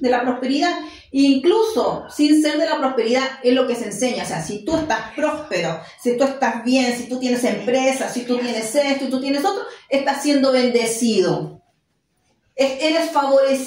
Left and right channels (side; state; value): both; identical; correlation 1.00